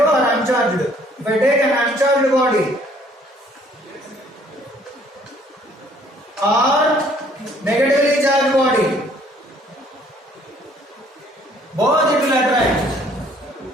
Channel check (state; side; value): normal; both; correlation 0.60